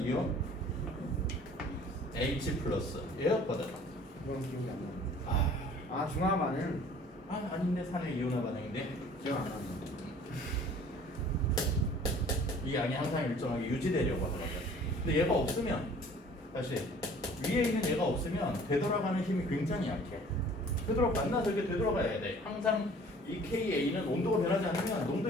H 플러스 얘였거든. 그건 기억이 안 나요. 아 중화반은 아닌데 산의 이온화 반응인데 기억 안 나요. 이 양이 항상 일정하게 유지되려고 하더라고요. 근데 얘가 없으면 다시 위에 있는 얘가 없으면 되돌아가는 힘이 굉장히 약해. 만나서 이렇게 되돌아가야 돼. 항상 이 KA는 온도가 변하지 않으면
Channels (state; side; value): normal; both; correlation 0.51